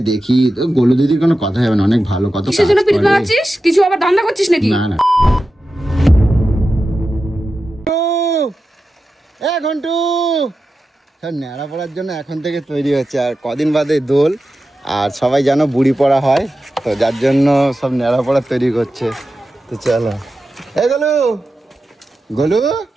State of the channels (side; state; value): both; normal; correlation 0.92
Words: দেখি, তো গোলু দিদির কোনো কথা হবে না, অনেক ভালো কথা। কিসের জন্য পিরিত লাগাচ্ছিস? কিছু আবার ধান্দা করছিস নাকি? না না এ ঘন্টু সব ন্যাড়া পড়ার জন্য এখন থেকে তৈরি হচ্ছে, আর কদিন বাদে দোল, আর সবাই জানো বুড়ি পড়া হয়, তো যার জন্য সব ন্যাড়া পড়া তৈরি করছে। তো চলো এ গোলু, গোলু